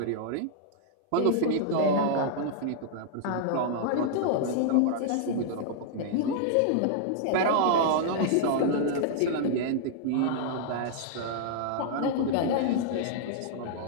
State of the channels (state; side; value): different; both; correlation -0.01